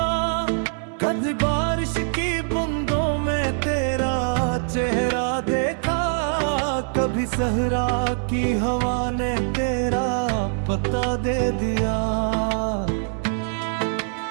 कभी बारिश की बूंदों में तेरा चेहरा देखा, कभी सहरा की हवा ने तेरा पता दे दिया।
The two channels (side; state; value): left; silent; digital silence